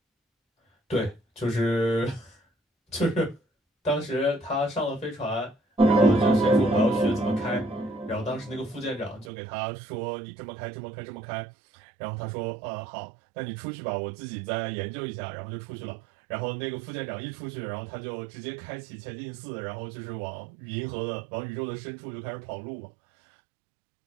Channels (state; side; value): drops out; left; at 9.3 s